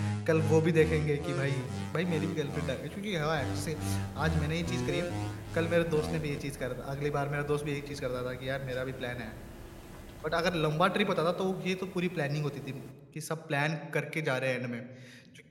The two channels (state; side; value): identical; both; correlation 1.00